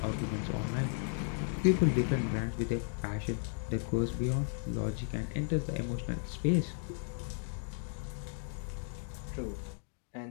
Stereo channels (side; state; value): right; silent; 54 dB below the other